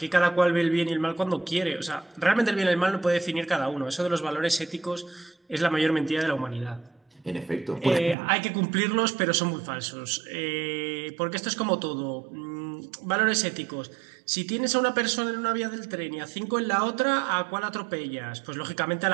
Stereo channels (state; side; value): drops out; left; at 8.2 s